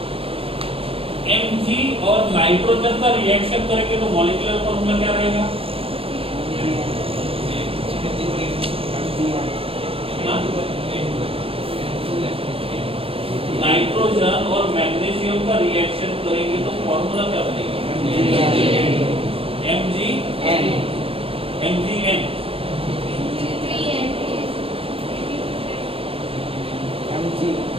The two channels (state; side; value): late; left; 0.27 ms